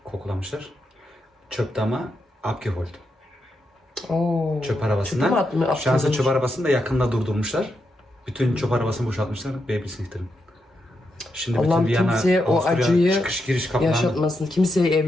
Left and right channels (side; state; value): both; normal; correlation 0.84